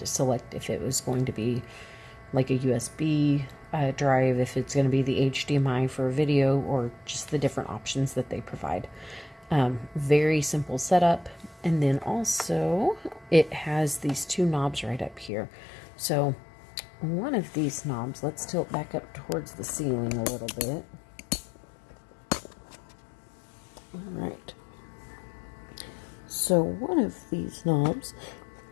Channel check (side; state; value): right; drops out; at 15.3 s